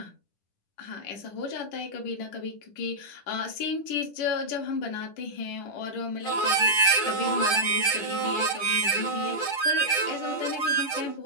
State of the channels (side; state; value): right; late; 10 ms